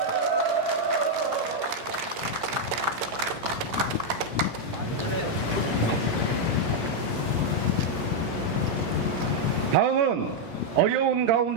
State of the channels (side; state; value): both; normal; correlation -0.01